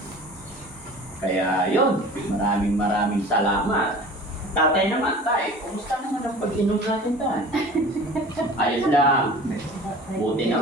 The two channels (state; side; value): normal; both; correlation 0.41